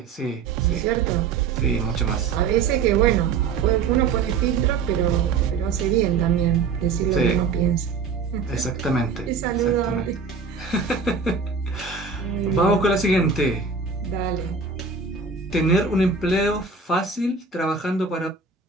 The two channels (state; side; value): quieter; left; 5.2 dB